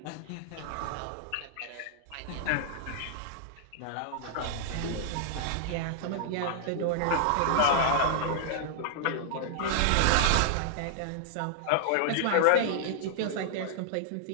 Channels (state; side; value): different; both; correlation -0.01